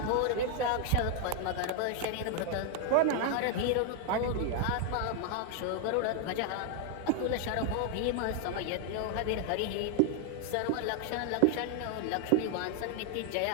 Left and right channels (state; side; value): different; both; correlation 0.00